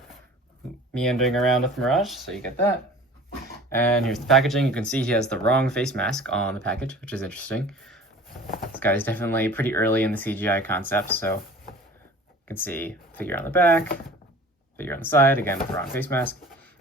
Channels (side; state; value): both; normal; correlation 0.43